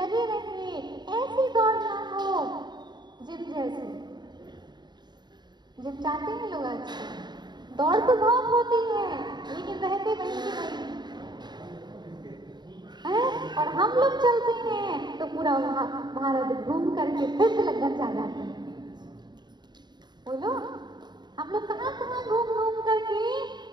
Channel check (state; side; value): late; left; 0.21 ms